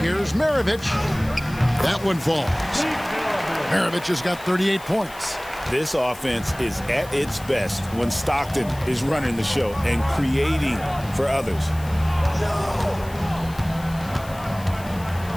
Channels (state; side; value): noise; left; hiss, 19 dB below the sound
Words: Here's Maravich. That one falls. Maravich has got 38 points. This offense is at its best when Stockton is running the show and creating for others.